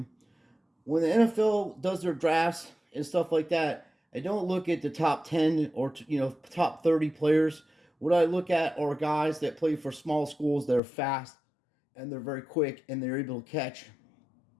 when the NFL does their drafts and stuff like that, I don't look at the top 10 or top 30 players. What I look at are guys that play for small schools that are fast and they're very quick and they're able to catch.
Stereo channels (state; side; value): drops out; right; at 10.8 s